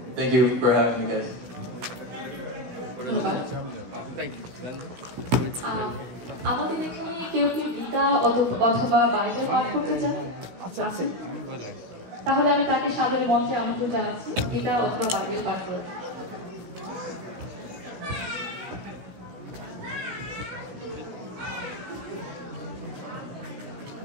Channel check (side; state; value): left; late; 16 ms